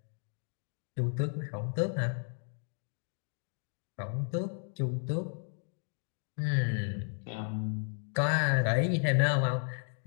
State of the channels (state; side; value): silent; right; 55 dB below the other